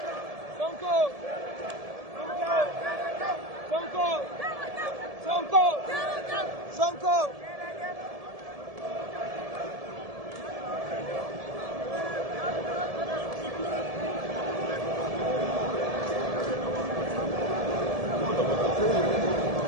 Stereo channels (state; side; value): late; left; 1.7 ms